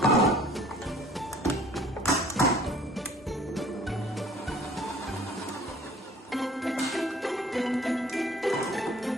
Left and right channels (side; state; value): both; normal; correlation 0.52